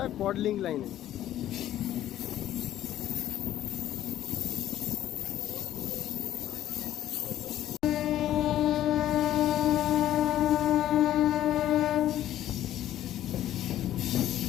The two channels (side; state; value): right; quieter; 12.6 dB